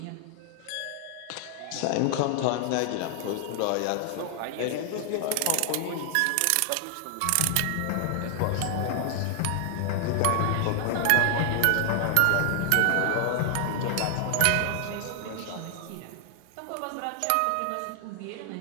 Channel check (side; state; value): both; different; correlation 0.00